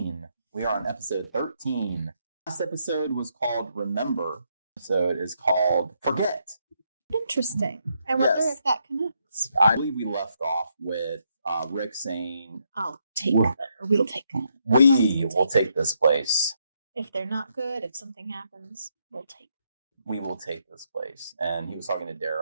We are on episode 13. Last episode was called Remember. So it is called Forget. Interesting. I wonder if that connects. I believe we left off with Rick saying, I'll take them, or we'll take them. We will take this place. If they're not good, if something happens, we'll take them. We will take this place. And he was talking to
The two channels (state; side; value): inverted; both; correlation -0.77